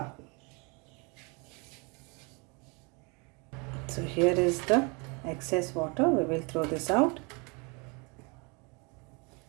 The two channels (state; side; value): quieter; left; 30.9 dB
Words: So here is the excess water. We will throw this out.